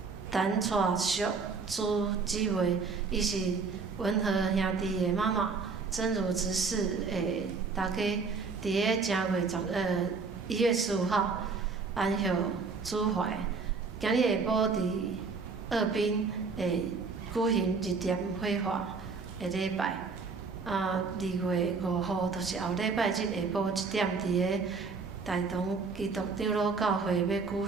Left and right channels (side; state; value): left; quieter; 4.7 dB